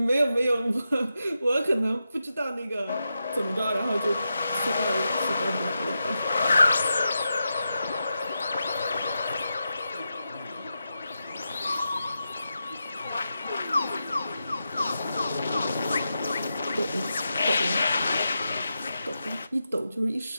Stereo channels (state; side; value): inverted; both; correlation -0.89